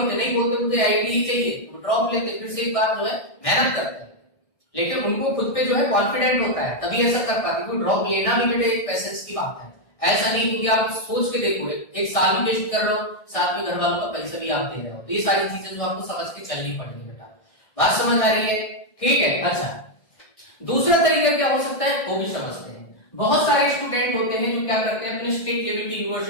नहीं बोलते मुझे आईआईटी ही चाहिए, तो ड्रॉप लेते, फिर से एक बार जो है मेहनत करते हैं, लेकिन उनको खुद पे जो है कॉन्फिडेंट होता है, तभी ऐसा कर पाते। क्योंकि ड्रॉप लेना भी बेटे एक पैसेंस की बात है। ऐसा नहीं, क्योंकि आप सोच के देखो एक साल भी वेस्ट कर रहे हो, साथ में घर वालों का पैसा भी आप दे रहे हो। तो ये सारी चीजें जो आपको समझ के चलनी पड़ेगी बेटा। बात समझ आ रही है? ठीक है, अच्छा दूसरा तरीका क्या हो सकता है वो भी समझते हैं। बहुत सारे स्टूडेंट होते हैं जो क्या करते हैं, अपने स्टेट लेवल की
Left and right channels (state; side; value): late; right; 1.6 ms